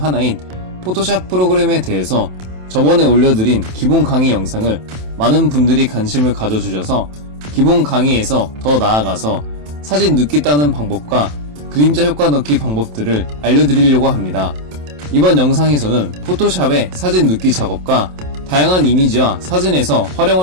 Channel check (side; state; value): left; late; 27 ms